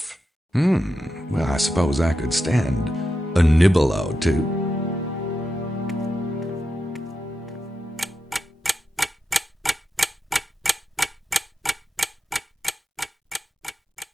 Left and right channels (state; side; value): normal; both; correlation 0.88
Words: Well, I suppose I could stand a nibble or two.